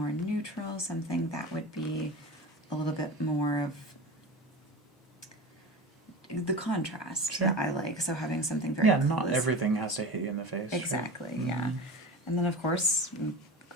neutral, something that would be a little bit more of the contrast that I like. So having something very not everything has to hit you in the face. Exactly, yeah. And then of course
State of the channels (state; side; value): normal; both; correlation 0.30